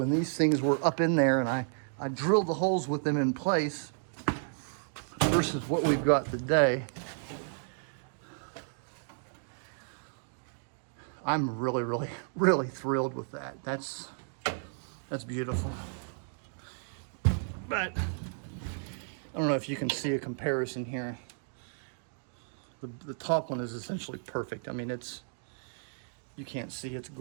these things were up in there and I drilled the holes with them in place versus what we've got today. I'm really thrilled with that. That's beautiful. But I don't know if you can see a comparison here. The top one is essentially perfect. I mean, you can't see, it's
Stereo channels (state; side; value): silent; left; digital silence